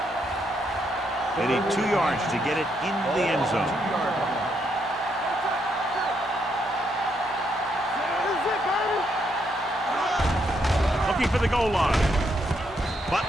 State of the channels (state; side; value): normal; both; correlation 0.76